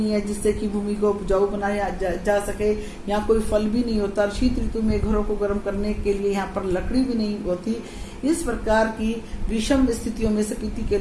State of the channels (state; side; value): identical; both; correlation 1.00